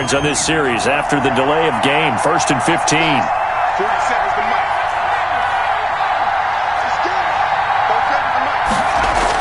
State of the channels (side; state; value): both; identical; correlation 1.00